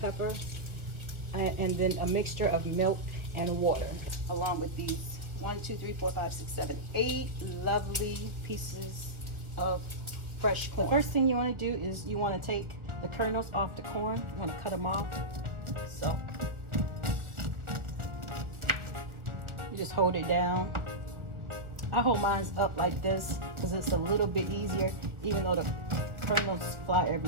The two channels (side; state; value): left; late; 1.2 ms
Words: and then a mixture of milk and water, along with these 8 lovely pieces of fresh corn. First thing you want to do is you want to take the kernels off the corn. You want to cut them off. So you just hold it down. I hold mine up like this because it's a little bit easier, even though the kernels fly